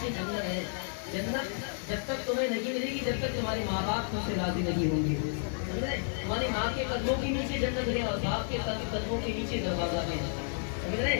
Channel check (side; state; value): right; silent; 57 dB below the other